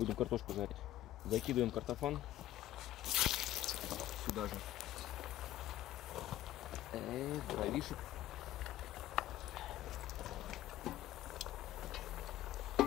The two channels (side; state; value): right; quieter; 13.9 dB